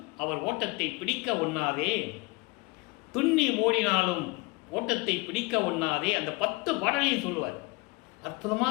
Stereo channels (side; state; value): right; quieter; 26.1 dB